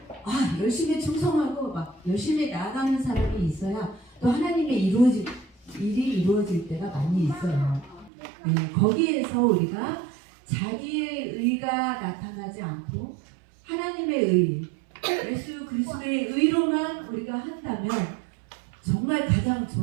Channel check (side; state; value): left; drops out; at 8.1 s